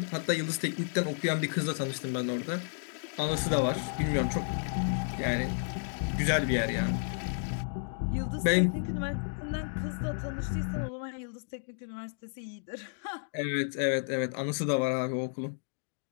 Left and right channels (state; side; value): silent; right; digital silence